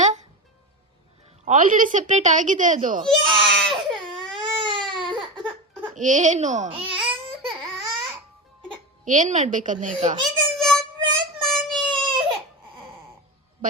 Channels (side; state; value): both; normal; correlation 0.20